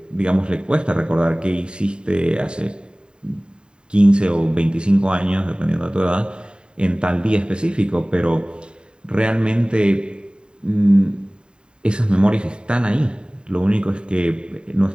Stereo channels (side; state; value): left; late; 0.050 ms